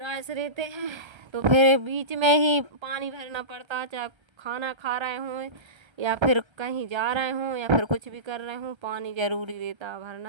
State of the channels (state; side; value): late; left; 1.3 ms